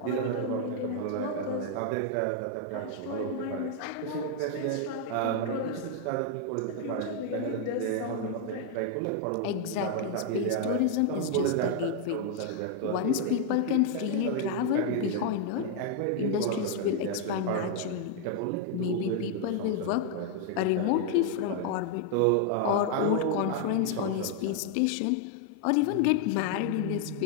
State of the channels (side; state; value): both; different; correlation 0.00